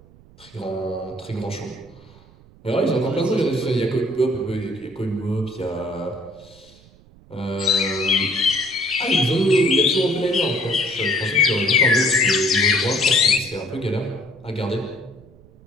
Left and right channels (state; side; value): noise; right; rumble, 25 dB below the sound